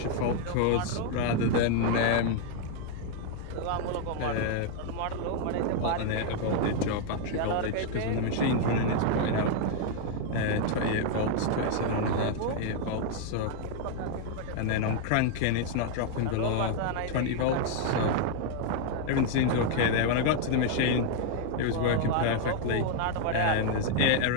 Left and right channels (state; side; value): different; both; correlation 0.00